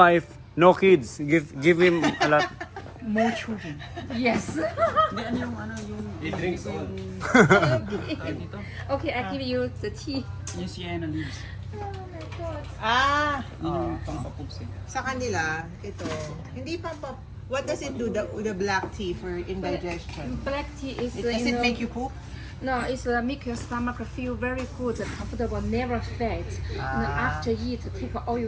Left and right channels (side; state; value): both; identical; correlation 1.00